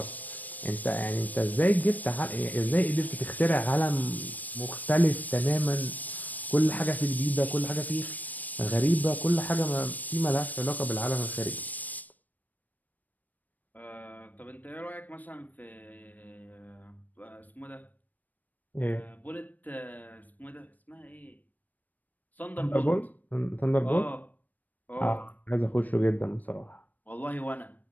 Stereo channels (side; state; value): right; late; 0.083 ms